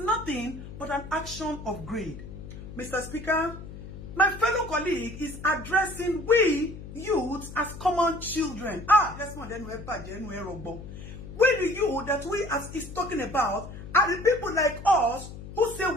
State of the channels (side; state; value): left; noise; hum, 12 dB below the sound